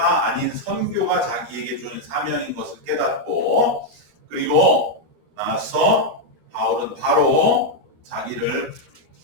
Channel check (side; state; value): left; late; 13 ms